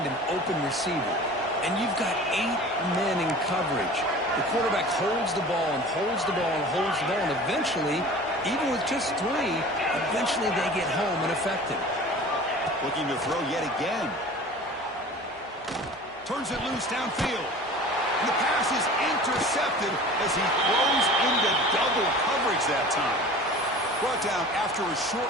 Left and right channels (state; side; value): normal; both; correlation 0.41